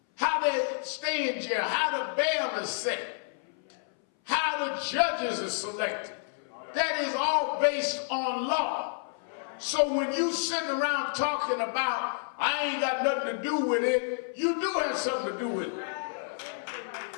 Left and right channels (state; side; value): silent; right; 58 dB below the other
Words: How they stay in jail, how the bail is set, how the judges are selected. That is all based on law. So when you sitting around talking about, I ain't got nothing to do with it, you do have something to do with it.